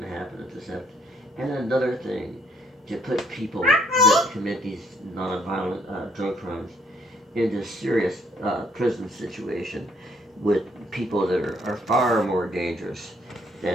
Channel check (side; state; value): both; normal; correlation 0.66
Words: to happen if this happens, and another thing to put people that commit these non-violent drug crimes into serious prison situation with people that are far more dangerous